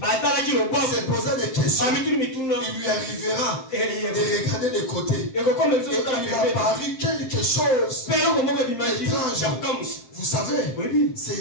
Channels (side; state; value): right; late; 7.6 ms